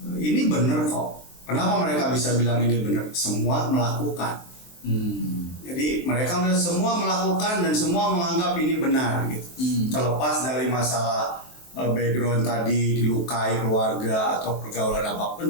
ini benar kok. Kenapa mereka bisa bilang ini benar? Semua melakukan. Jadi mereka semua melakukan dan semua menganggap ini benar gitu. Terlepas dari masalah background tadi, dilukai keluarga atau pergaulan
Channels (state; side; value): late; right; 23 ms